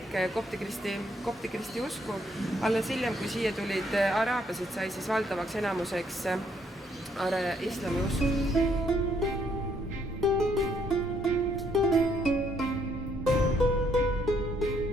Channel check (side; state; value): both; normal; correlation 0.70